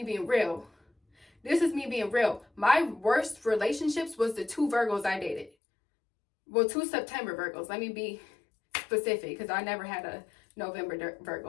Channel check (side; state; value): right; drops out; at 5.5 s